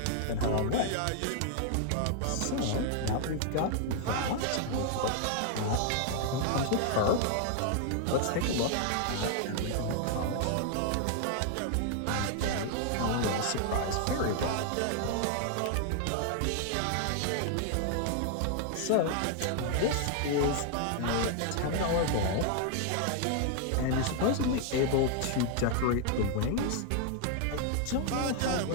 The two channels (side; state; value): both; different; correlation 0.00